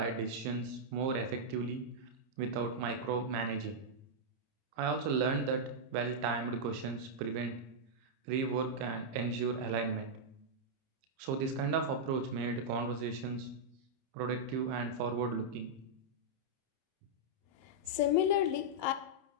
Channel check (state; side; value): late; left; 30 ms